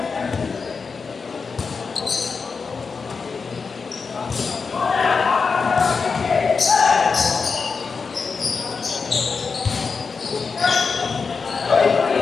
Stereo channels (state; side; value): quieter; right; 5.1 dB